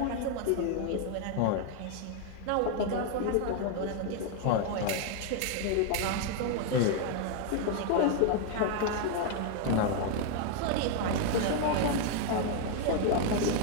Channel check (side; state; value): both; different; correlation 0.00